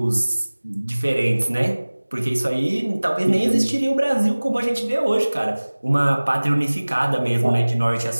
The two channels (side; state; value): both; inverted; correlation -1.00